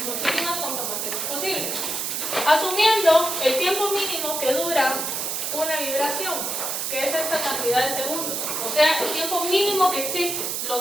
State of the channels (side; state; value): right; noise; hiss, 2 dB below the sound